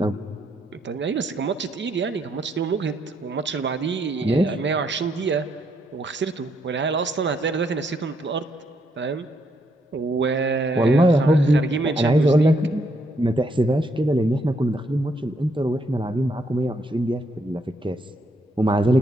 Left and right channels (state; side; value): normal; both; correlation 0.74